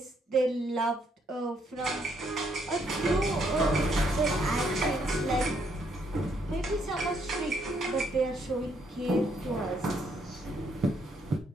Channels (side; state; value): both; normal; correlation 0.72